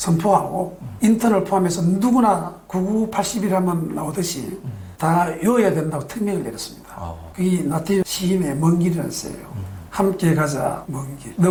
인턴을 포함해서 누구나 9980일 하면 나오듯이 다 외워야 된다고 특명을 내렸습니다. 그게 나태주 시인의 먼 길이라는 시예요. 함께 가자 먼 길.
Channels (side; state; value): both; identical; correlation 1.00